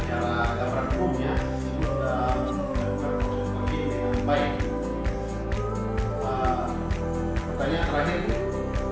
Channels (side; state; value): both; identical; correlation 1.00